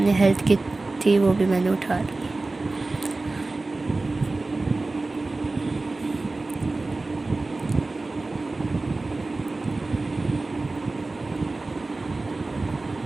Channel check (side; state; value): left; quieter; 3.3 dB